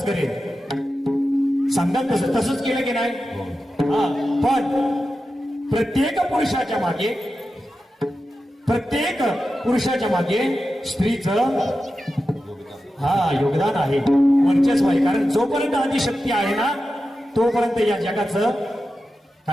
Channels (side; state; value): both; normal; correlation 0.92